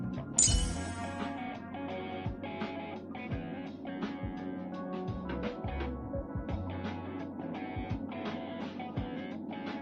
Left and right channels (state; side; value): identical; both; correlation 1.00